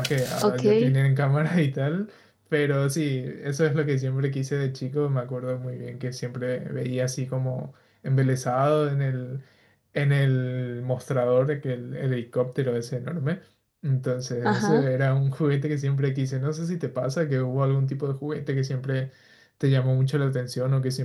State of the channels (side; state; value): both; identical; correlation 1.00